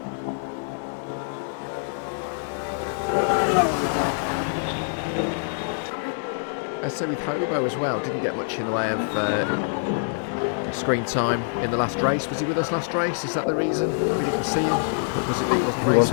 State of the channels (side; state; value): right; silent; 62 dB below the other